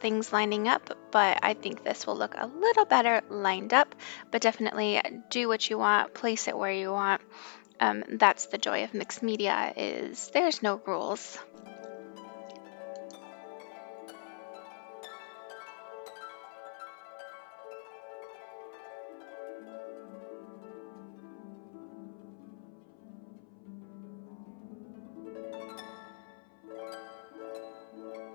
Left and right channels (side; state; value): right; silent; 55 dB below the other